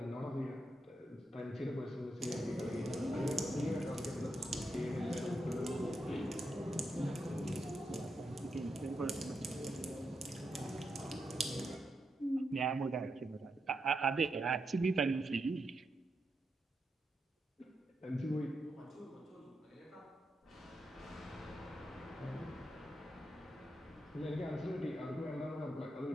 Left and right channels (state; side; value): normal; both; correlation 0.84